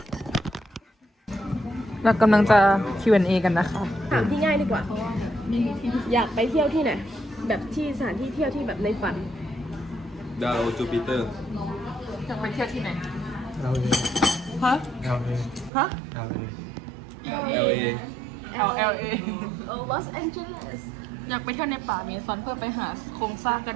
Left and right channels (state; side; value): drops out; left; at 15.7 s